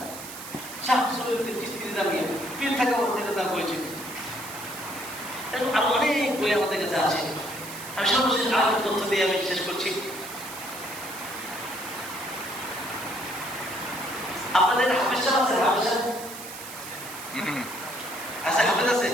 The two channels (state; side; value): noise; right; hiss, 12 dB below the sound